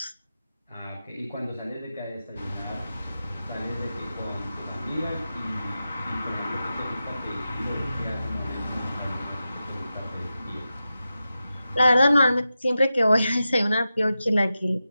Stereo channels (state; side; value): inverted; both; correlation -0.92